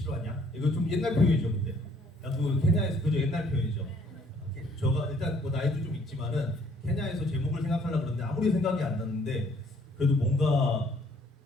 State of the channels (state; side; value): normal; both; correlation 0.62